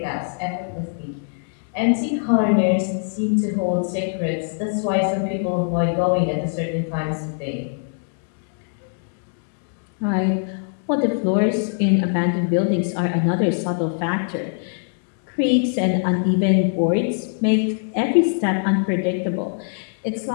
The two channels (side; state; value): right; silent; digital silence